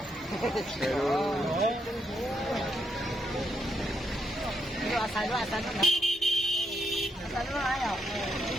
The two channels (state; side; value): normal; both; correlation 0.78